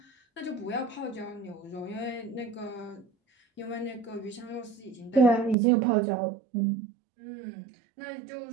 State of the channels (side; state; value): left; drops out; at 5.6 s